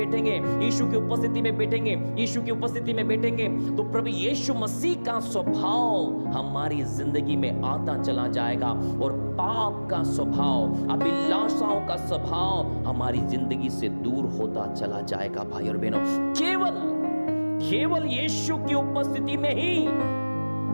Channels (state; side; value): inverted; both; correlation -1.00